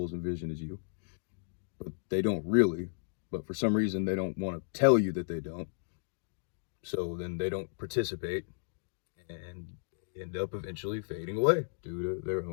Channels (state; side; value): silent; right; digital silence